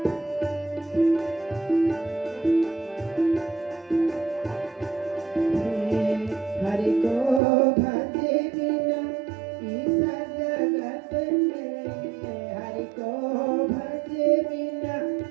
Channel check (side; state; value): left; drops out; at 7.4 s